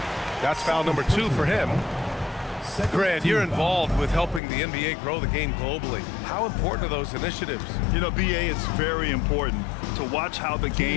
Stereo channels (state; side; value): drops out; right; at 4.4 s